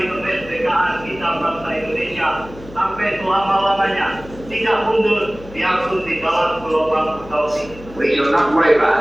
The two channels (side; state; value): left; noise; hum, 18 dB below the sound